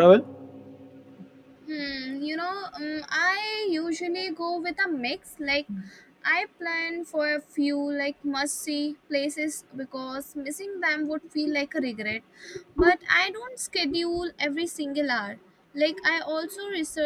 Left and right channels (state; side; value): identical; both; correlation 1.00